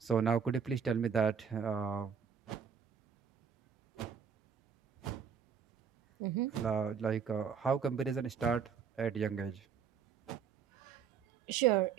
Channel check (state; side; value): quieter; left; 7.0 dB